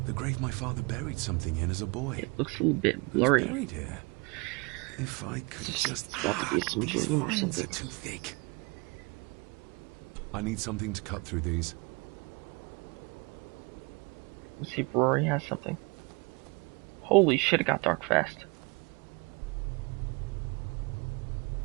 The grave my father buried something in as a boy. It looks a little bit blurry. Who's buried here? If I could just... It's got to be some these dream or vines something. are too thick. I need something to cut through these. Let's see if Rory has something. Holy shit, it got dark fast.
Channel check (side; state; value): left; quieter; 29.0 dB